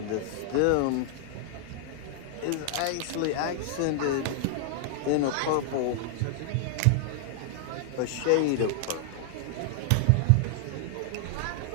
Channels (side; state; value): both; different; correlation 0.00